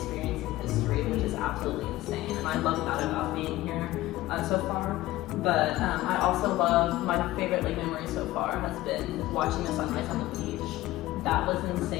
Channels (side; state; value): right; quieter; 16.9 dB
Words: history, which is absolutely insane. And I love that about being here so far. But I also love, my favorite memory so far has been watching the sunrise on the beach. That was